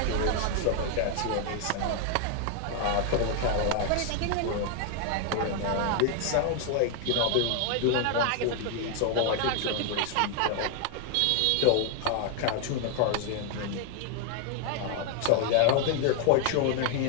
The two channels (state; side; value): different; both; correlation 0.00